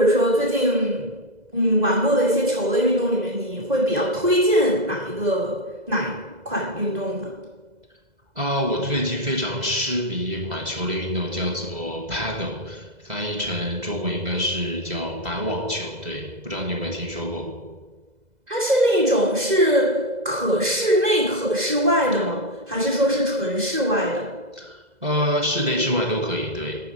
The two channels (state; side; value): late; left; 2.0 ms